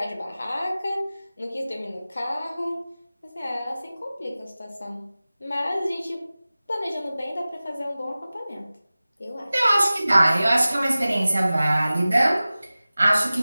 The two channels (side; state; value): both; inverted; correlation -0.97